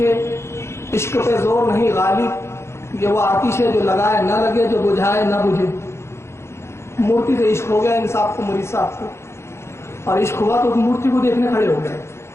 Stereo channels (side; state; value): right; late; 0.13 ms